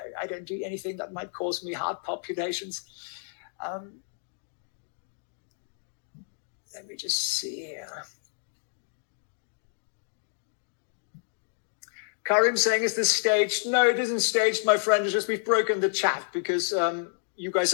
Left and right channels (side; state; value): right; silent; digital silence